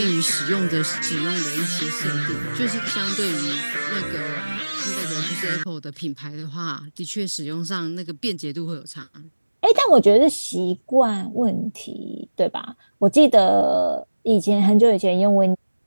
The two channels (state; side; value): inverted; both; correlation -1.00